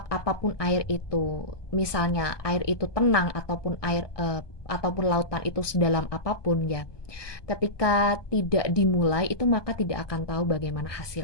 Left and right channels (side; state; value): right; late; 1.2 ms